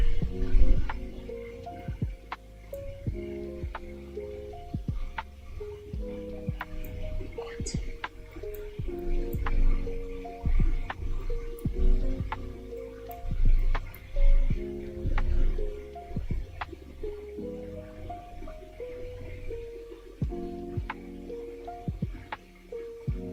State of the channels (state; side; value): identical; both; correlation 1.00